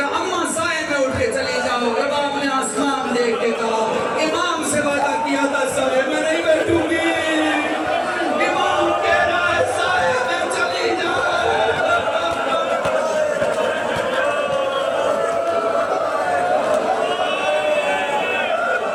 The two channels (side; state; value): both; identical; correlation 1.00